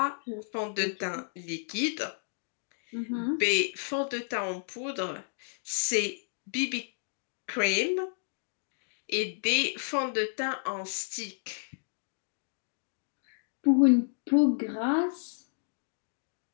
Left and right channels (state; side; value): silent; right; digital silence